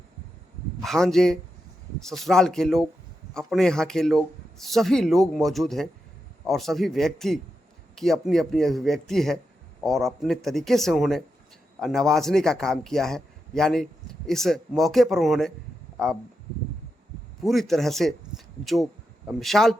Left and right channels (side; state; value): both; normal; correlation 0.87